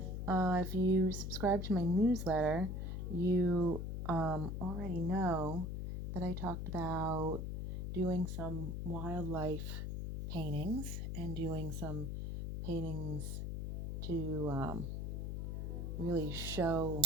If you subscribe to my newsletter, you already know that I talked about doing some wildlife paintings and doing some paintings to really show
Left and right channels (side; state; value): left; noise; hum, 3 dB below the sound